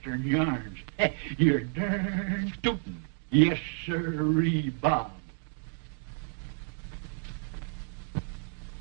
yarns. You're darn tootin'. Yes, sirree, Bob.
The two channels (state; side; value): silent; left; 57 dB below the other